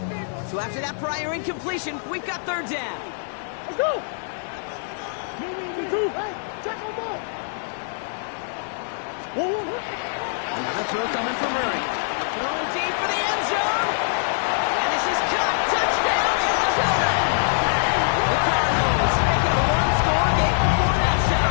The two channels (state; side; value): silent; right; digital silence